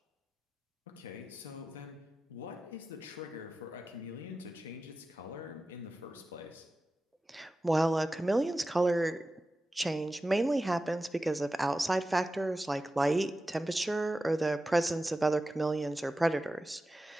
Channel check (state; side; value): normal; both; correlation 0.94